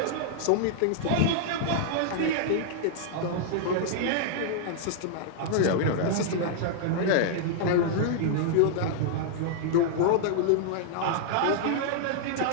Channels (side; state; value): both; different; correlation -0.01